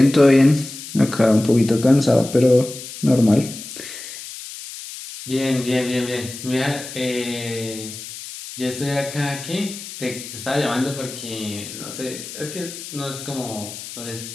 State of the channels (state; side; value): noise; left; hiss, 12 dB below the sound